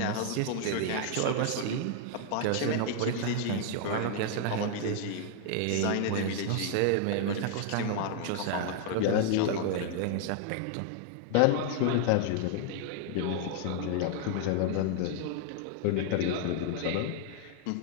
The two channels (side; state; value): both; different; correlation 0.00